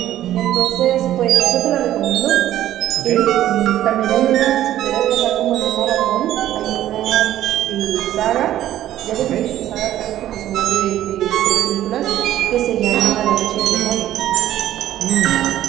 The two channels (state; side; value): quieter; left; 12.8 dB